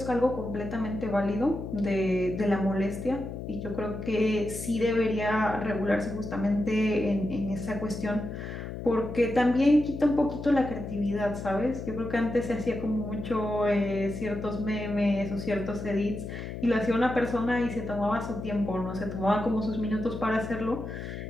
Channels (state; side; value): noise; left; hum, 8 dB below the sound